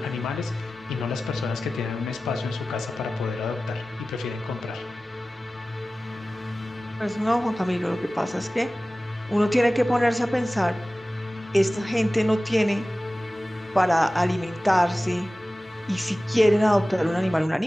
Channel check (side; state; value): both; normal; correlation 0.96